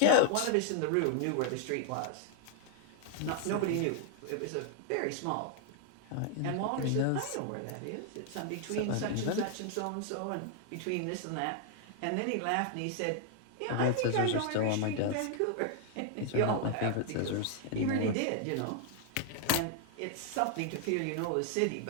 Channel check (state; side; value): different; both; correlation 0.00